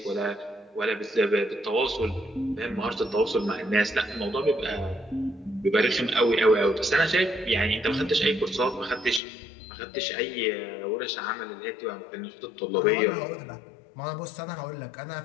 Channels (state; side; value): drops out; right; at 9.2 s